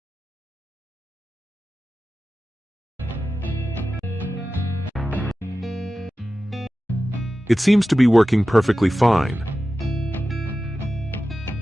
It seems to be working perfectly fine.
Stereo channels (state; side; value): normal; both; correlation 0.94